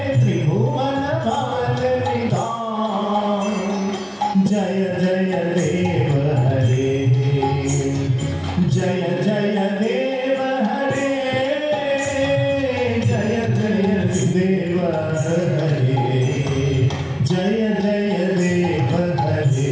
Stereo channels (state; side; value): identical; both; correlation 1.00